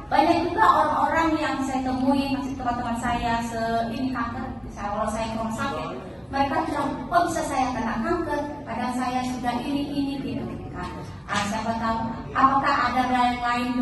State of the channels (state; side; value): identical; both; correlation 1.00